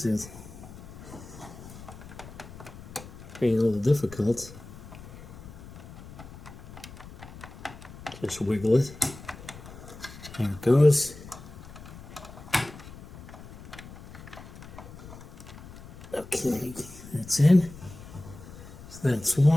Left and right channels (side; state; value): left; noise; rumble, 15 dB below the sound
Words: are being a little difficult. Just wiggle it. There it goes. Okay, that's in. So that's